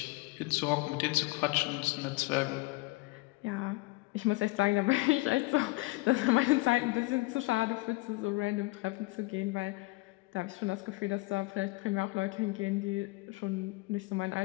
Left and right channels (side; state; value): right; quieter; 22.8 dB